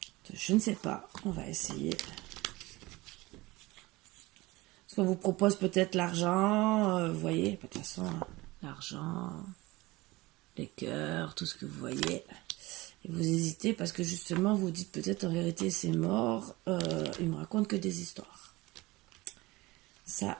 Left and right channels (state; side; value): quieter; left; 20.9 dB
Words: Je ne sais pas, on va essayer. Parce qu'on vous propose peut-être l'argent, vous voyez, de toute façon, l'argent, les cœurs, tout ce que vous voyez. Et vous hésitez parce que justement, vous dites peut-être en vérité c'est mort, il me raconte que des histoires. Ça